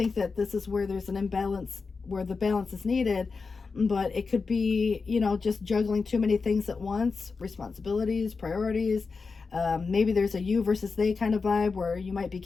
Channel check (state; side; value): quieter; right; 4.6 dB